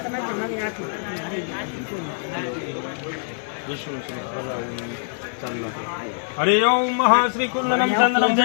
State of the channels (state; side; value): silent; right; digital silence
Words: વિષ્ણુ હરિઓમ મહા શ્રી કુંડનમ ચંદનમ